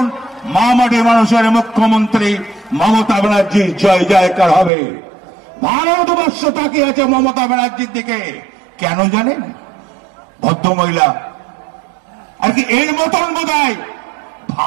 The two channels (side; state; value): left; drops out; at 4.7 s